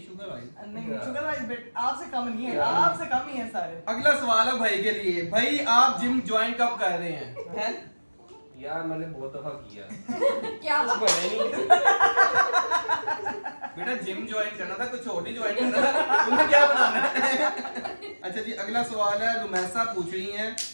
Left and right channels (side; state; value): both; inverted; correlation -1.00